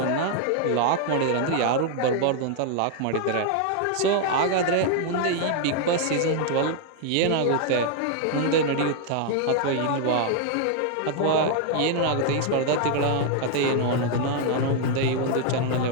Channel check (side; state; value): both; different; correlation 0.00